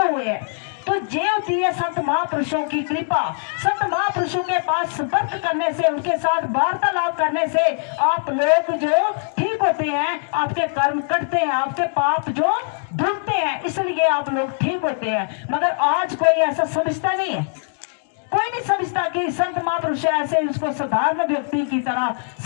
हुए हैं, तो ये होती है संत महापुरुषों की कृपा। संत महापुरुषों के पास संपर्क करने से, उनके साथ वार्तालाप करने से आप लोग जो ठीक होते हैं, आपके कर्म कटते हैं, आपके पाप जो धुलते हैं, इसलिए आप लोग ठीक होते हैं। मगर आज कोई ऐसा समझता नहीं है, कोई नहीं समझता कि संत महापुरुष ऐसे उसको साधारण व्यक्ति की तरह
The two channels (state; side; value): silent; right; 65 dB below the other